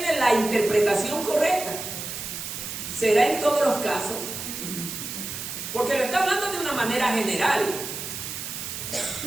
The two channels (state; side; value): noise; right; hiss, 7 dB below the sound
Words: la interpretación correcta. ¿Será en todos los casos? Porque lo está hablando de una manera general.